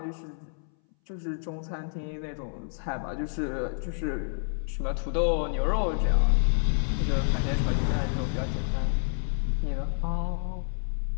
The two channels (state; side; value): silent; right; 59 dB below the other